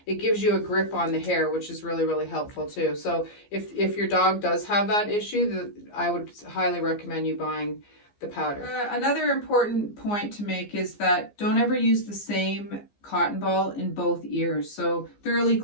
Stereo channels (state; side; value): late; right; 15 ms